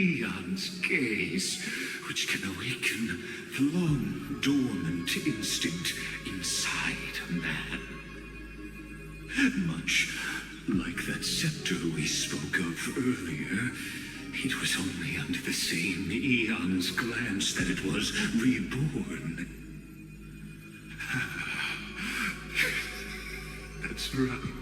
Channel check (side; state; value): both; identical; correlation 1.00